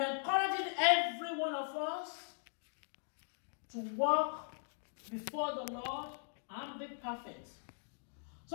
encouraging every one of us to walk before the Lord and be perfect,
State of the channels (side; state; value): right; silent; digital silence